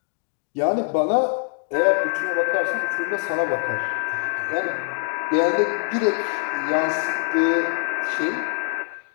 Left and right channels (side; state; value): right; quieter; 36.6 dB